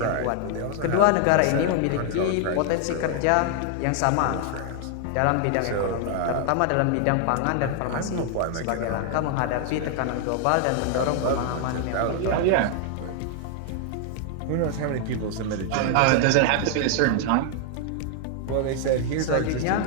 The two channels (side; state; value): both; different; correlation 0.00